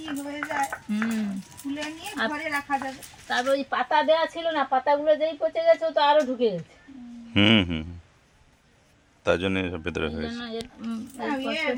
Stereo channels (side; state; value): both; identical; correlation 1.00